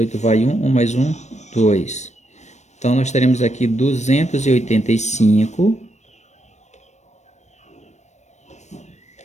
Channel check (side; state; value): right; late; 0.34 ms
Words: vai 1, 1 mais 1, 2. Então, nós teremos aqui 285,